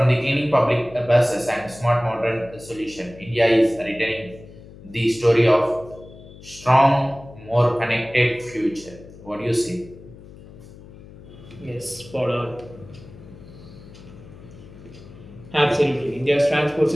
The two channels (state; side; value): noise; left; hum, 19 dB below the sound